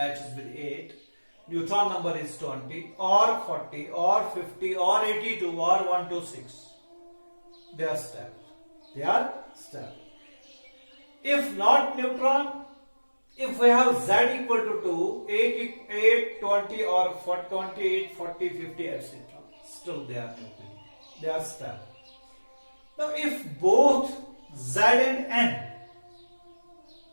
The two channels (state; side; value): inverted; both; correlation -1.00